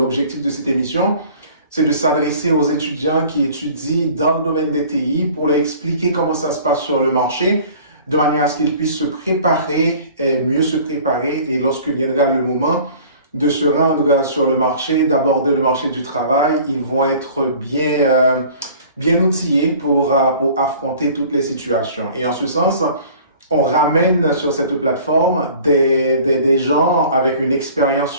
de cette émission, c'est de s'adresser aux étudiants qui étudient dans le domaine des TI pour leur expliquer comment ça se passe sur le marché, de manière à ce qu'ils puissent se préparer et mieux se préparer, et lorsque viendra le moment de se rendre sur le marché, d'aborder le marché du travail, ils vont être bien outillés pour affronter toutes les situations. Et en ce sens, on ramène sur cette plateforme des gens avec une expérience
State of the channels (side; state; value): both; inverted; correlation -0.48